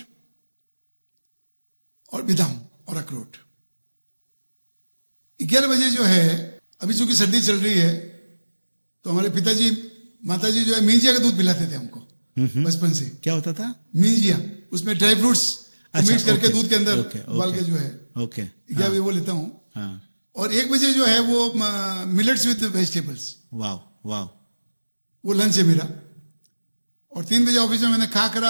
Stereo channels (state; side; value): inverted; both; correlation -1.00